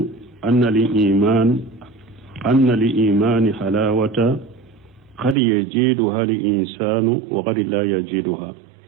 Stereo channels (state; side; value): drops out; left; at 5.4 s